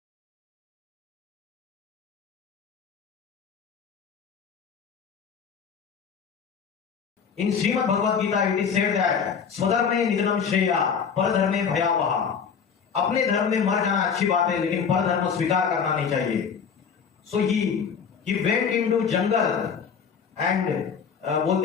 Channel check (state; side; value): quieter; right; 6.6 dB